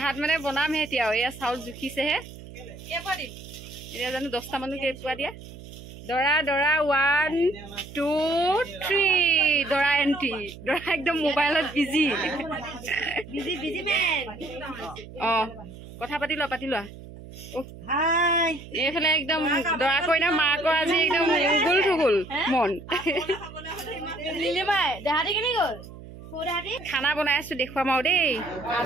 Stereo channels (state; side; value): noise; right; hum, 16 dB below the sound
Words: মানে বনামহে এতিয়া এয়া চাউল জুখিছেহে এতিয়া জানো 10টা মানুহ কেইপুৱা দিয়া দৰা দৰা 1 2 3 দৰা এণ্ট্ৰি দৰা একদম মোবাইলত বিজি কথা পাতি লোৱা এইফালে একদম দৰা কইনা মাকৰ আজি একদম উগুল থুগুল মন খানা বনাই আছো দেখুৱাম আৰু দেই